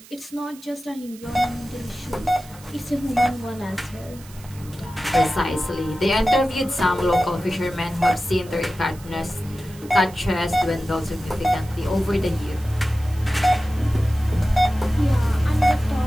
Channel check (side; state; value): right; noise; hiss, 21 dB below the sound